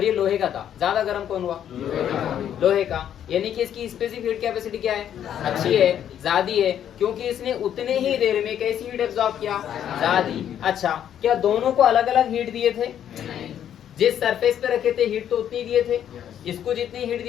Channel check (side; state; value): right; quieter; 9.9 dB